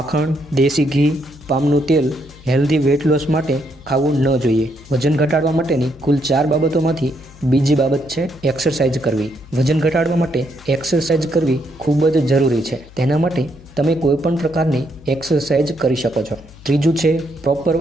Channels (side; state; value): left; noise; hum, 21 dB below the sound